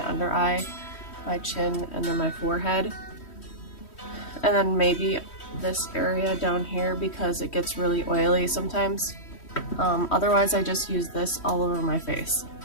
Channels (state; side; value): late; right; 3.1 ms